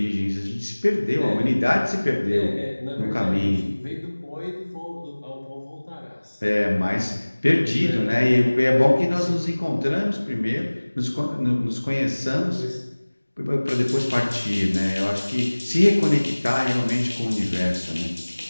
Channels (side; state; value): both; inverted; correlation -1.00